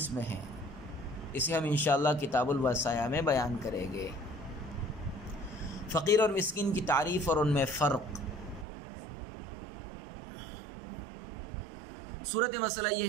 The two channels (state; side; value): drops out; left; at 8.7 s